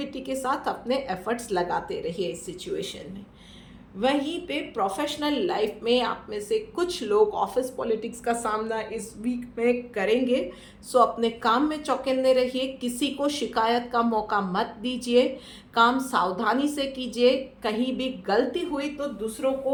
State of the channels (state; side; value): identical; both; correlation 1.00